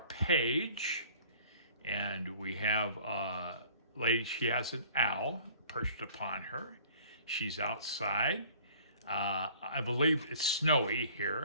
and we have a lady, she has an owl perched upon her. She's outside. I believe it's snowy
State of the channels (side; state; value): both; inverted; correlation -0.51